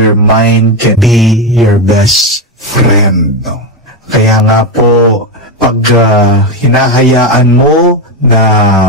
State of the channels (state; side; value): normal; both; correlation 0.11